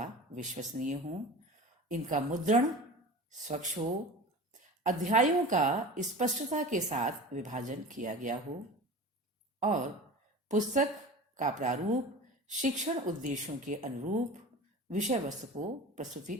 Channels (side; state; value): both; normal; correlation 0.35